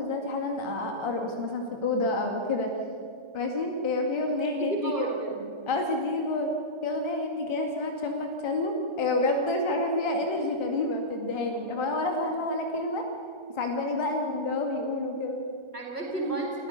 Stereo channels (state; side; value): late; left; 1.3 ms